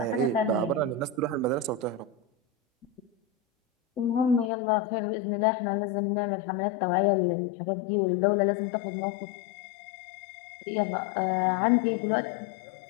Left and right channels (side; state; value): right; drops out; at 4.5 s